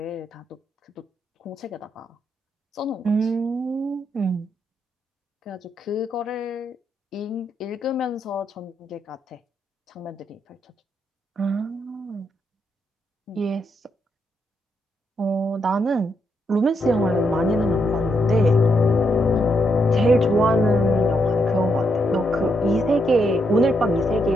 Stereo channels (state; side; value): normal; both; correlation 0.79